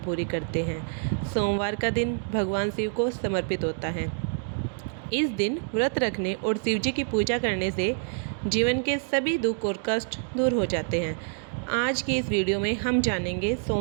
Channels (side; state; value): left; silent; 60 dB below the other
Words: करते हैं। सोमवार का दिन भगवान शिव को समर्पित होता है। इस दिन व्रत रखने और शिवजी की पूजा करने से जीवन के सभी दुख और कष्ट दूर हो जाते हैं। आज की इस वीडियो में हम जानेंगे